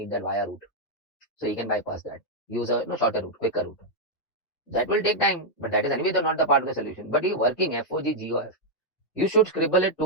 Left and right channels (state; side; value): late; right; 3.4 ms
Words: that via route. So you can bypass that. Use a shorter route, quicker route. That will take time, but that is anyway not the part of the solution. But you working FOG, GOF. You should scribble it